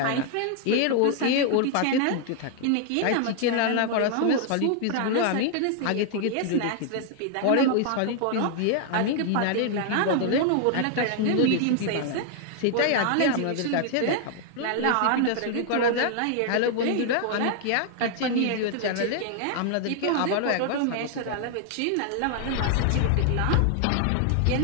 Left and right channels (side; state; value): both; different; correlation 0.00